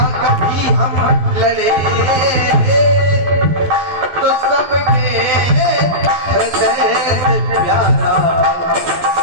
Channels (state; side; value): late; left; 12 ms